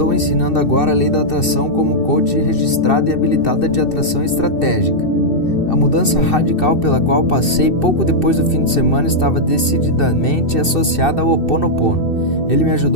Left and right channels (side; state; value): right; late; 2.6 ms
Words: ensinando agora a lei da atração como coach registrada e habilitada de atração estratégica. A mudança radical pela qual passei pouco depois do fim de semana estava decididamente associada ao Ho Oponopono. Ele me